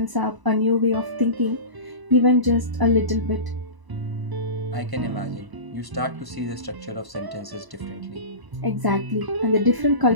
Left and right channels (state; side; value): late; left; 1.0 ms